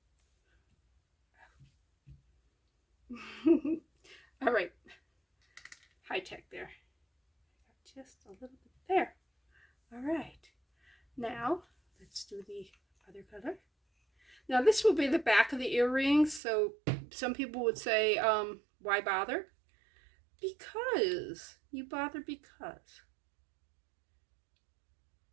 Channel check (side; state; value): left; drops out; at 16.4 s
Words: All right, high tech there. Just a little bit there. All right, now let's do the other color. Now this will be the back of the earrings, so some people would say, why bother? Because you bother because